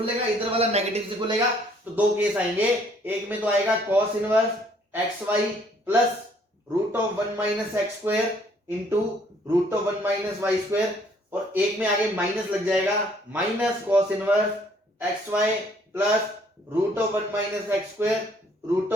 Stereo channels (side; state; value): both; normal; correlation 0.63